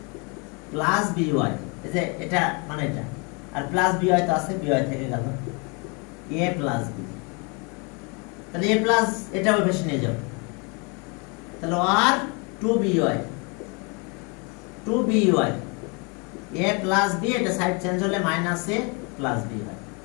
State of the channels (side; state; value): right; quieter; 32.3 dB